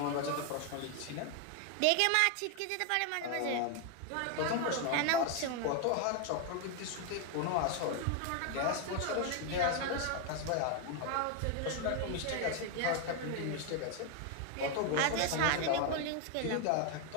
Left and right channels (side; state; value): both; different; correlation 0.01